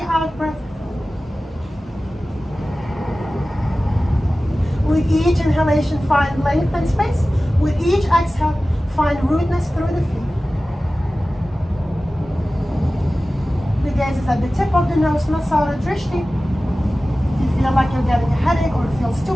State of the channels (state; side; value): normal; both; correlation 0.96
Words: out breath. With each inhalation, find length and space. With each exhale, find rootness through the feet. The gaze is at the tip of the nose, Nasara Drishti. If you feel like you're getting a headache or it feels too